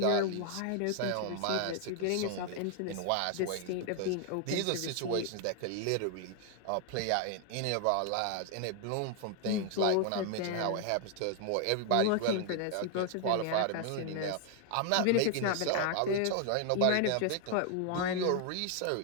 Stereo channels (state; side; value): different; both; correlation 0.00